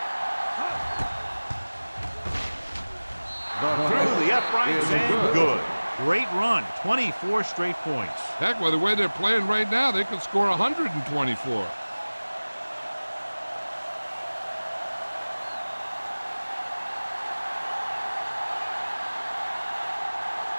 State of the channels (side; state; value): both; inverted; correlation -1.00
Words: Through the uprights and good. Great run. 24 straight points. Heck, with the way they're playing right now, they could score 124.